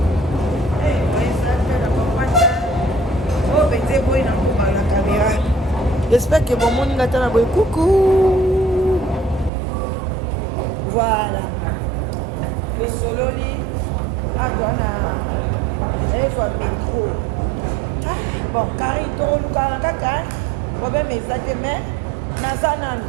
moyesa te na bakwata oyo penze boyi na kobala na caméra. J'espère que bon monde attend la coucou. Voilà. Le sololi adona soit métro. Bon, Karine to luka kaka. Problème exact mais nazana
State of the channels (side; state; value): left; drops out; at 9.5 s